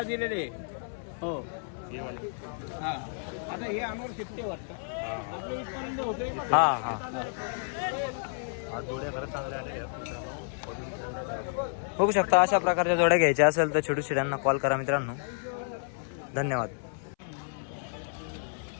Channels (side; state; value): right; silent; 57 dB below the other